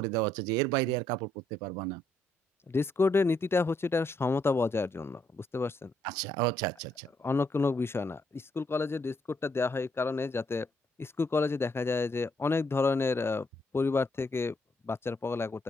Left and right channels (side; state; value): both; normal; correlation 0.73